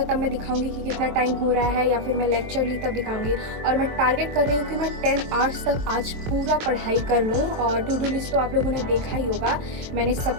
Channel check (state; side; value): late; left; 23 ms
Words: तब मैं दिखाऊंगी कि कितना टाइम हो रहा है, या फिर मैं लेक्चर ली तब दिखाऊंगी। और मैं टारगेट कर रही हूँ कि मैं 10 आवर्स तक आज पूरा पढ़ाई कर लूँ। और टू डू लिस्ट तो आप लोगों ने देखा ही होगा, मैंने